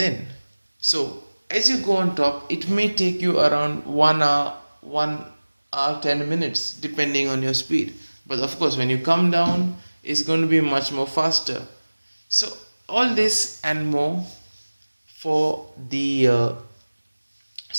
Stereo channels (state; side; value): inverted; both; correlation -1.00